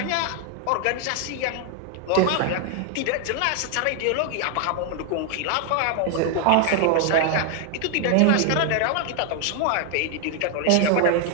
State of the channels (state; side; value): different; both; correlation 0.00